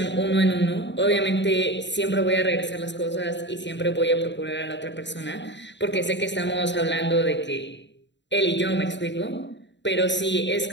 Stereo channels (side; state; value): right; late; 0.52 ms